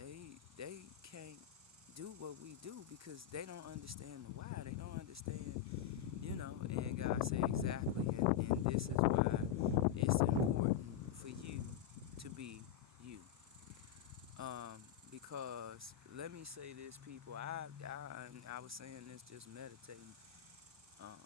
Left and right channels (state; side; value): quieter; right; 9.9 dB